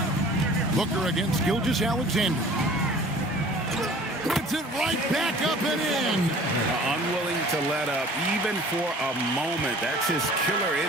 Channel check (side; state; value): both; normal; correlation 0.48